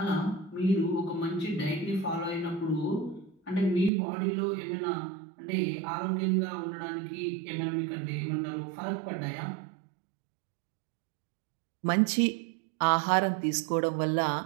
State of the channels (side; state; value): left; drops out; at 3.9 s